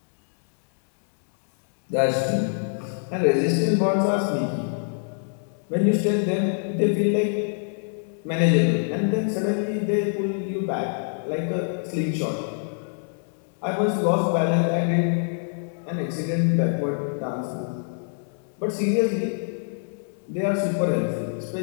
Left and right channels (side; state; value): right; silent; digital silence